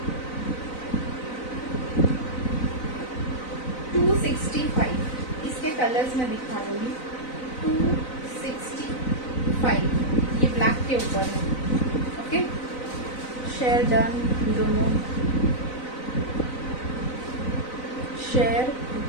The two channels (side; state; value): right; late; 3.9 ms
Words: 265। इसके कलर्स मैं दिखा दूंगी, 265। ये ब्लैक के ऊपर है, ओके। शेयर डन, दोनों शेयर